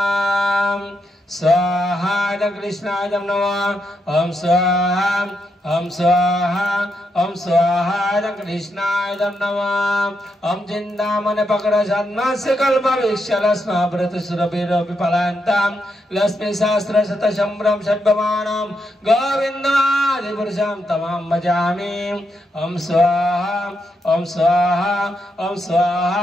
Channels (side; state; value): both; normal; correlation 0.82